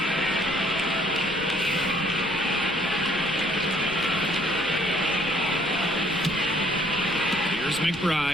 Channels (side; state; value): left; noise; rumble, 19 dB below the sound